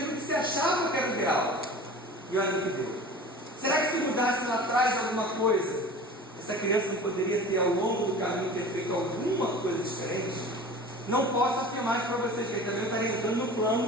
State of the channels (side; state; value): both; normal; correlation 0.39